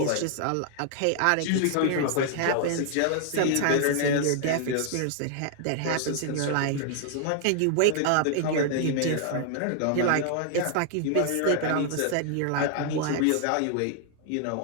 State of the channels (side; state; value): both; different; correlation 0.00